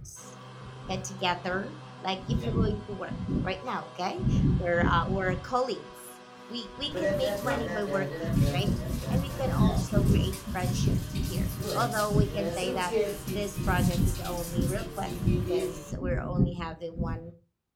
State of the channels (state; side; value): identical; both; correlation 1.00